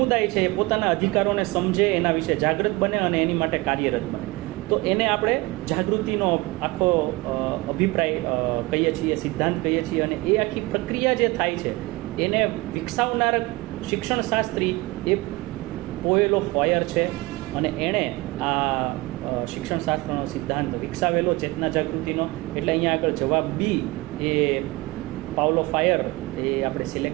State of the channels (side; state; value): left; quieter; 22.0 dB